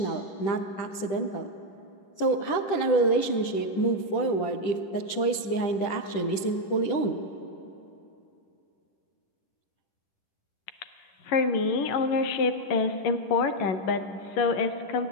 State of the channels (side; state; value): right; late; 10 ms